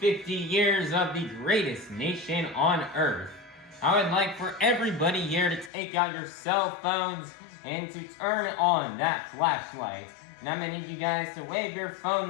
years of the greatest nation on earth. I would like for everybody here to take out your cell phones and to turn on that flashlight. And I'm going to need you guys to wave your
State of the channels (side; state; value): right; drops out; at 5.7 s